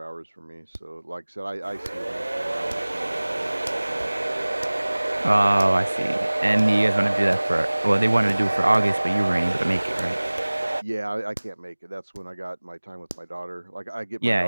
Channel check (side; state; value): both; inverted; correlation -1.00